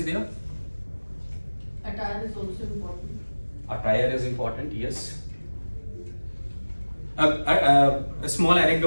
there? Attire is also important. Attire is important, yes. A small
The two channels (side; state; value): both; inverted; correlation -1.00